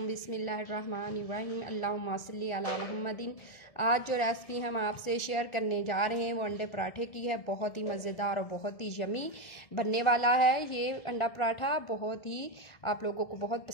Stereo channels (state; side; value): late; right; 1.6 ms